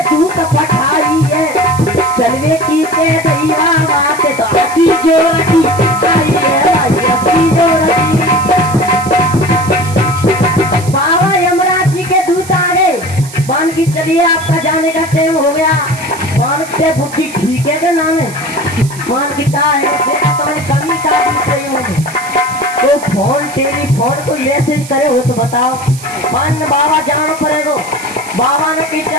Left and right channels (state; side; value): noise; right; hiss, 15 dB below the sound